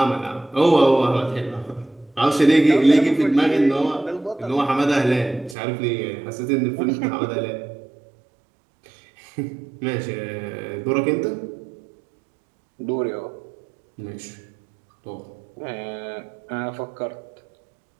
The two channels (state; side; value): drops out; left; at 5.6 s